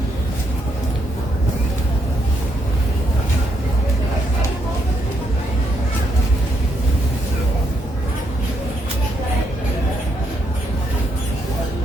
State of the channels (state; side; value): normal; both; correlation 0.77